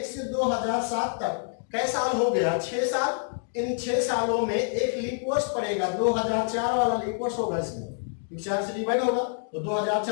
से 2007 तक कई साल हो गया? 6 साल। इन 6 सालों में एक लीप वर्ष पड़ेगा, 2004 वाला लीप वर्ष होगा इसमें, 4 से डिवाइड होगा तो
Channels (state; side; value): silent; right; digital silence